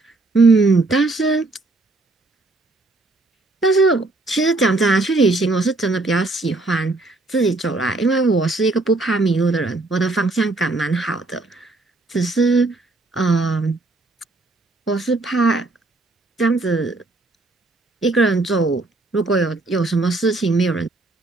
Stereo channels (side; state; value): left; quieter; 3.2 dB